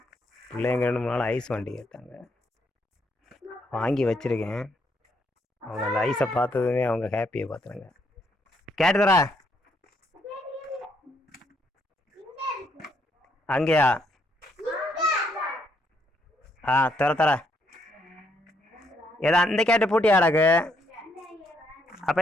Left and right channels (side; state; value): both; normal; correlation 0.73